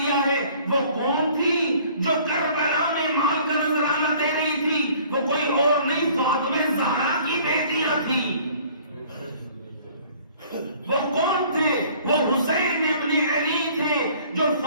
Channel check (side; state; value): both; inverted; correlation -0.53